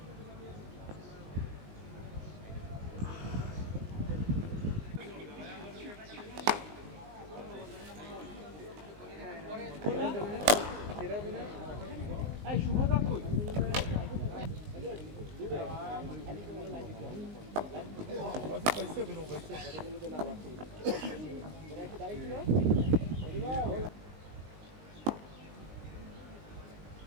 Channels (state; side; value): late; left; 19 ms